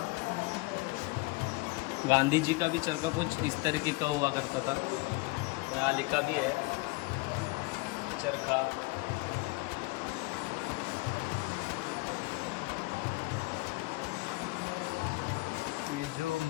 गांधी जी का भी चरखा कुछ इस तरीके का हुआ करता था। यहाँ लिखा भी है चरखा। ये जो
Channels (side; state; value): right; quieter; 24.4 dB